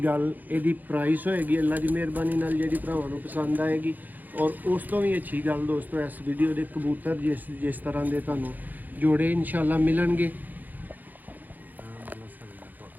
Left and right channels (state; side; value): late; left; 0.084 ms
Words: गल यदि प्राइस होएगी अल्लाह की मेहरबानी नाल जिहड़ी भरावां नूं पसंद आएगी। और उस तो भी अच्छी गल दोस्तों इस वीडियो के कबूतर जिस तरह के तुहानूं जोड़े इंशाअल्लाह मिलणगे।